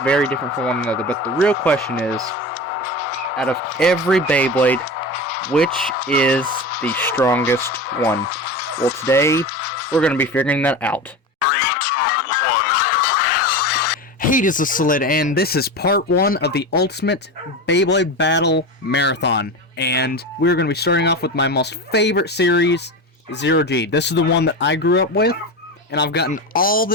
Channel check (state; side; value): normal; both; correlation 0.25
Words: very different from one another, but the real question is, out of every Beyblade, which is the strongest one? Well, today, we're going to be figuring that out. 3, 2, 1. Hey, this is Solid, and this is part 1 of the Ultimate Beyblade Battle Marathon. And we're going to be starting off with my most favorite series, Zero G. This is the one that I grew up with, and I've gotten all